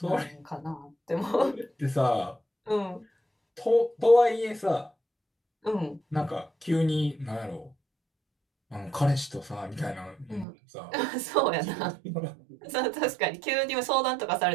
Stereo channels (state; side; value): drops out; left; at 10.5 s